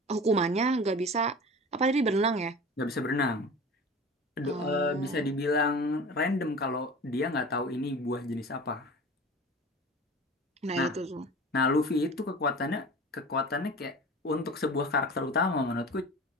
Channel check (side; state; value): both; normal; correlation 0.37